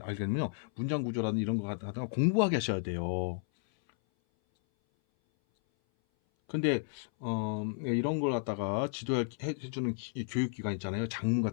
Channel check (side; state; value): right; silent; 56 dB below the other